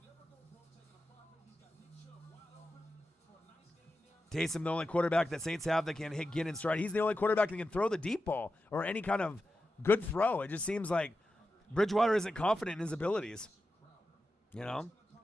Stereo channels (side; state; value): both; normal; correlation 0.91